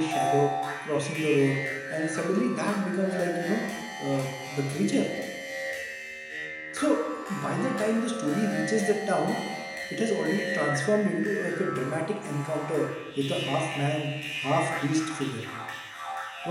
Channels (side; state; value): both; identical; correlation 1.00